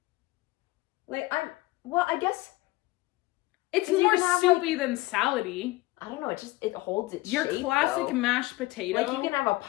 Like, I guess... It's more soupy than salady. I don't know, it holds its Your shape, classic though. mashed potato. Like, you can have a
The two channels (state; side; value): quieter; right; 19.8 dB